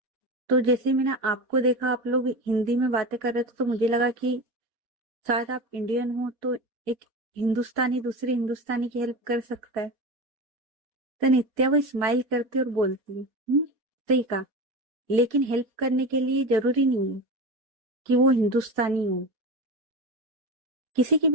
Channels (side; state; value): left; late; 4.6 ms